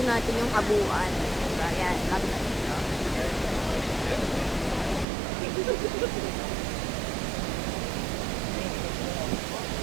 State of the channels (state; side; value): drops out; left; at 5.1 s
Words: natin yung kabuuan. Diba? Yan, lapit natin ito.